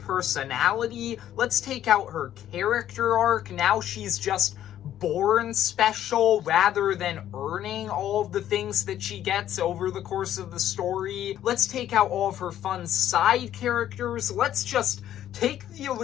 let's take out her character arc. Now she's just born special rather than earning all of the things that she gets over the course of the story. Let's take out all of her fun side characters. Let's just take the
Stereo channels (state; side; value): quieter; right; 11.6 dB